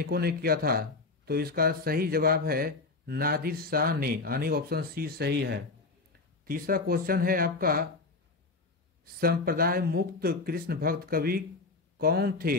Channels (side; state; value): right; quieter; 3.7 dB